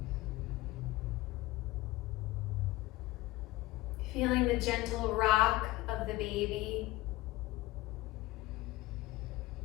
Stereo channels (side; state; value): right; quieter; 18.8 dB